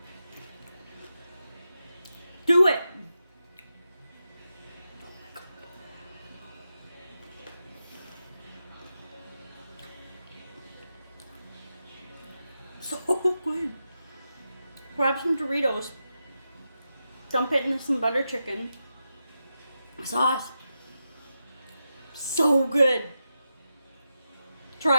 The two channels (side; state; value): both; inverted; correlation -0.89